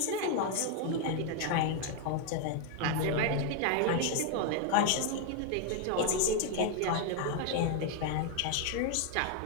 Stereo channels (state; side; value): different; both; correlation 0.01